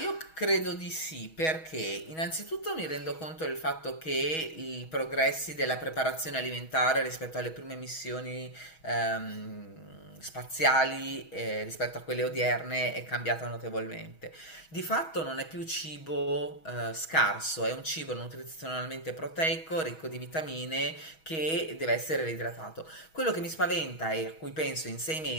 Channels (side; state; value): right; late; 6.3 ms